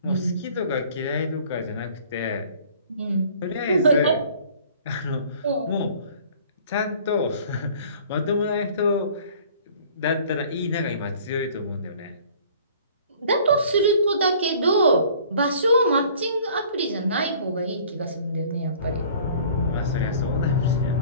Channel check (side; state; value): both; inverted; correlation -0.52